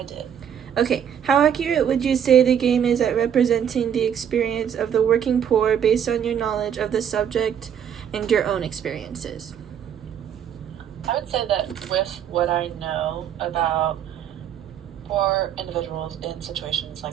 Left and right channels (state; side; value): quieter; left; 8.9 dB